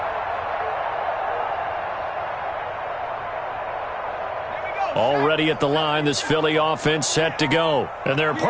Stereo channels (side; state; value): both; identical; correlation 1.00